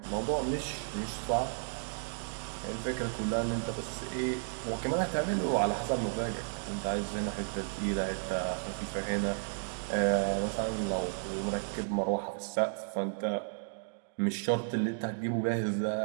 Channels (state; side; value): silent; left; digital silence